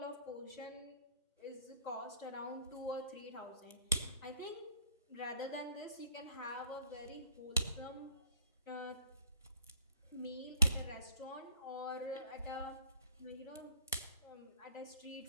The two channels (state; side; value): inverted; both; correlation -0.57